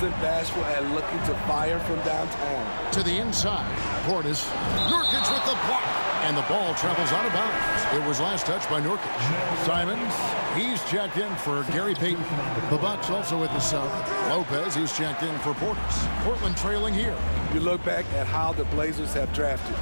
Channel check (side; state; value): both; inverted; correlation -1.00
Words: bashful at looking to fire from downtown. To the inside. Portis. Nurkic with the block. And the ball travels out of bounds. It was last touched by Nurkic. Simons, he's checked in for Gary Payton. The Bucks also with the sub. Lopez, he's checked in for Portis. Portland trailing here. You look back at how the Blazers have drafted.